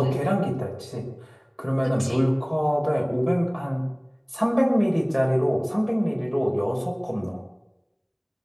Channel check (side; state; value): both; identical; correlation 1.00